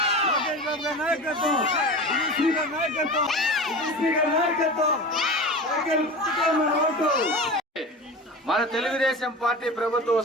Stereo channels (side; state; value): both; normal; correlation 0.31